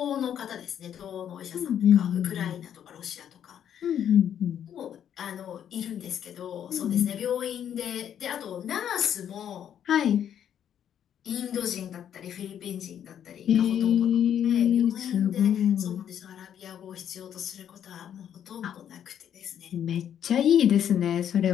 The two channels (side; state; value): right; quieter; 9.5 dB